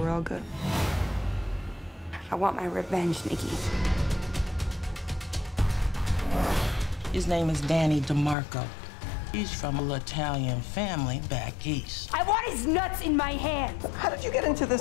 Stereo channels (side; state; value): right; drops out; at 8.3 s